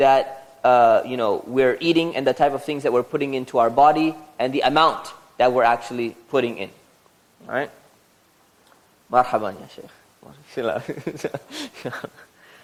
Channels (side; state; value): both; identical; correlation 1.00